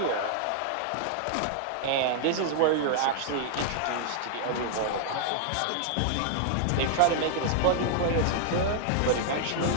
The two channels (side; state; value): both; different; correlation -0.01